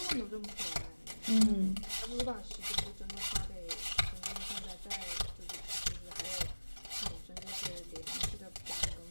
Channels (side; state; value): both; inverted; correlation -1.00